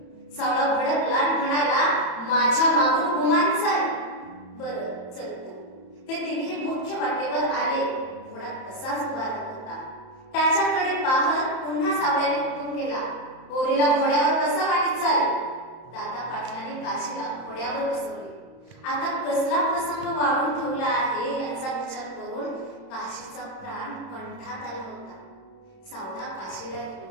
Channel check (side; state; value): right; late; 31 ms